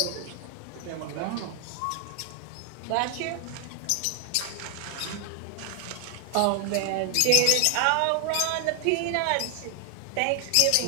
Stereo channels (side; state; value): both; different; correlation 0.00